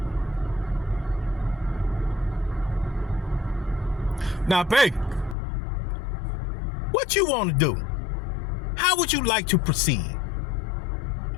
Now, baby, what you want to do? How would you like to proceed?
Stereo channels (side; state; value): right; drops out; at 5.4 s